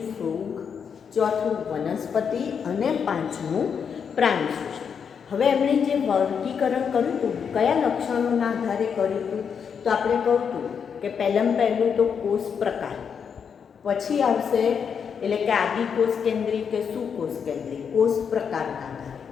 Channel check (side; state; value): right; quieter; 6.9 dB